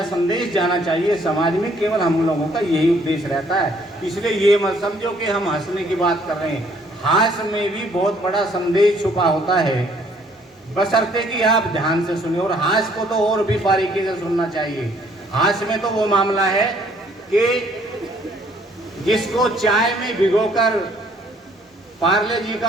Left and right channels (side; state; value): both; normal; correlation 0.63